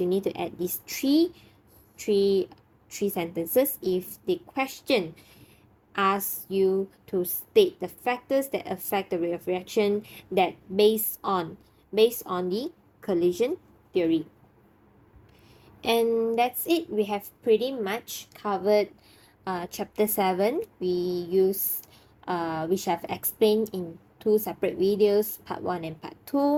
you need to add these three sentences. If the question asks you to state the factors that affect the rate of reaction, that based on the collision theory. And that's it. We have pretty much covered chapter 7. Which I've explained in 2 separate videos, part 1 and part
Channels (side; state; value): both; identical; correlation 1.00